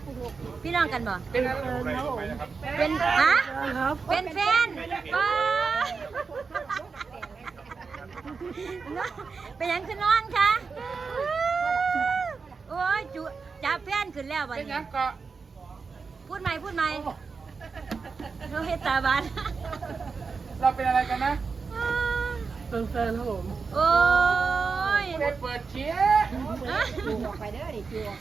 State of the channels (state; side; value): quieter; left; 4.9 dB